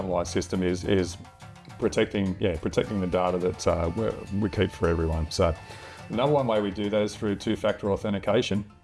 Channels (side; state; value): both; identical; correlation 1.00